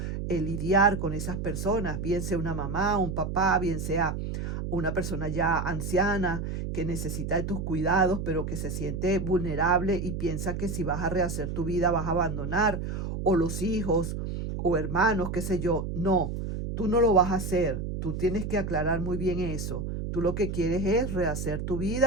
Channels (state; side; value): noise; right; hum, 4 dB below the sound